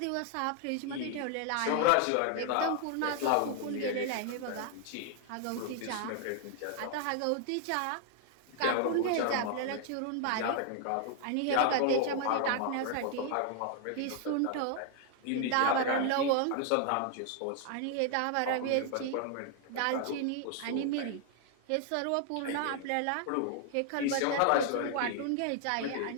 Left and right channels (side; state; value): both; different; correlation 0.00